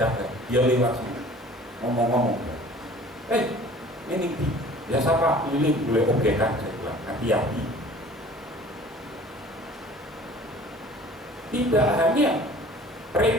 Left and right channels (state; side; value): normal; both; correlation 0.48